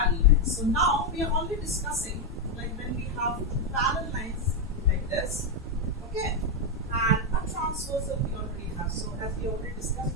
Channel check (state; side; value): normal; both; correlation 0.03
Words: lines. So now we are only discussing like when we have two parallel lines like this, okay, and a transversal we already have. So as we already discussed